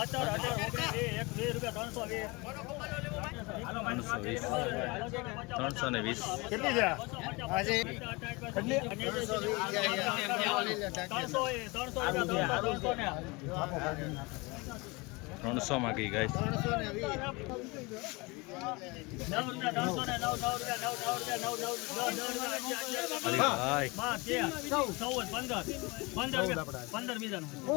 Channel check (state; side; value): quieter; right; 25.8 dB